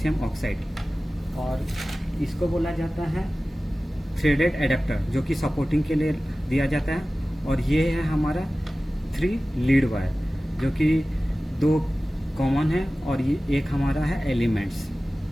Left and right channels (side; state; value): both; normal; correlation 0.97